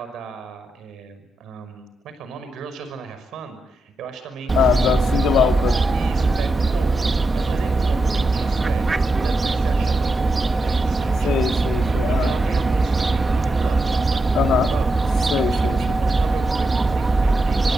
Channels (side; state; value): both; normal; correlation 0.87